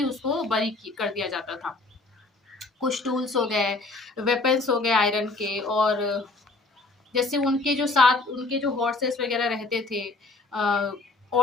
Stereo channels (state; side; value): quieter; right; 3.4 dB